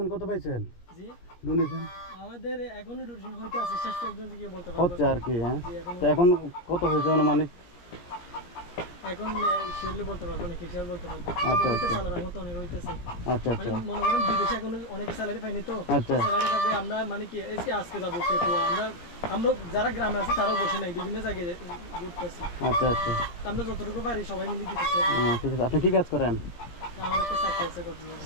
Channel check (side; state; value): right; late; 17 ms